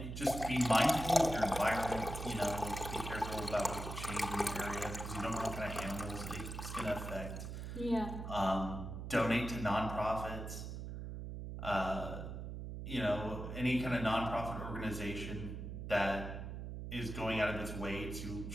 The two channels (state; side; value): noise; right; hum, 7 dB below the sound